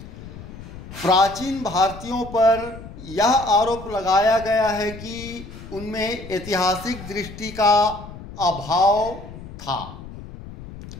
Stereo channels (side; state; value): left; noise; rumble, 14 dB below the sound